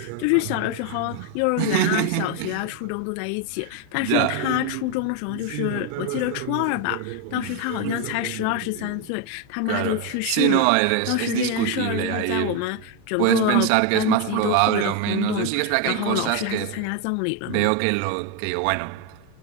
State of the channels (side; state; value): both; different; correlation 0.02